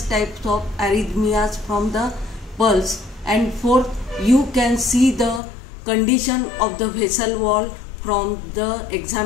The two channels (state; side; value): drops out; right; at 5.4 s